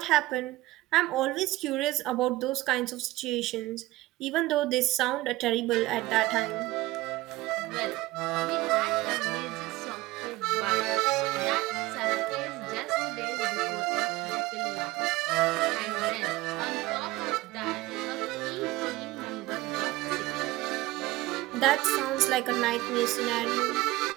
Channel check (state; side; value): quieter; left; 18.5 dB